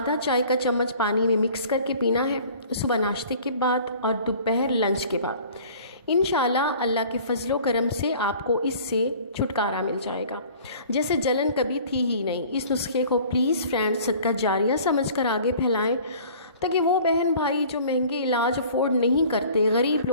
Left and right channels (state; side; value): inverted; both; correlation -0.48